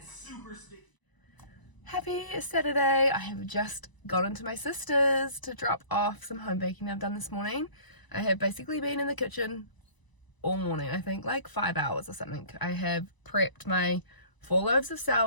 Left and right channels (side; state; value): right; late; 1.0 ms